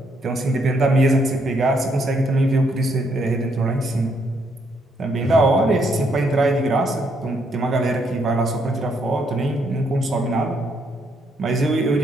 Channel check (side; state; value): both; normal; correlation 0.73